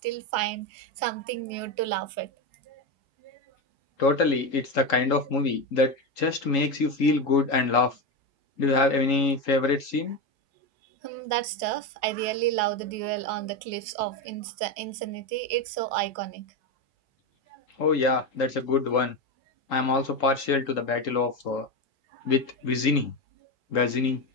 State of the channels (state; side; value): late; right; 3.8 ms